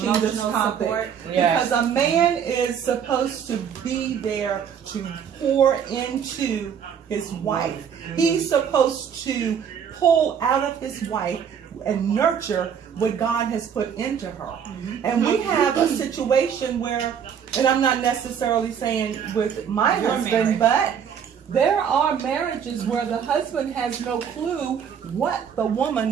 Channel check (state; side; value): quieter; left; 7.8 dB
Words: this topic, because a man is supposed to be there to pour into his wife. He's supposed to pull out of his wife and nurture what God has put into her. And we have a situation where, and I'm not necessarily saying with my husband, but there are marriages where the husband has no clue what the